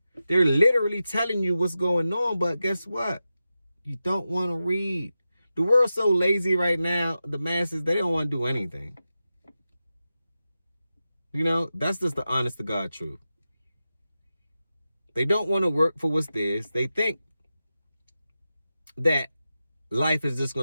They're literally telling you what's going on, but guess what? You don't want to read. The world's so lazy right now, the masses, they don't want to do anything. You know, that's just the honest to God truth. They don't want to work for what's theirs. They think that life is just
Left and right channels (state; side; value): inverted; both; correlation -0.91